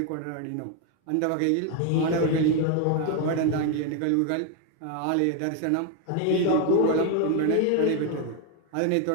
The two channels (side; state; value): both; different; correlation 0.01